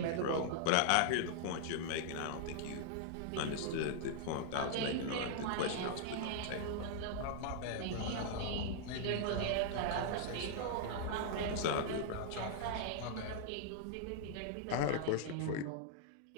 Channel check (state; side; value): different; both; correlation -0.01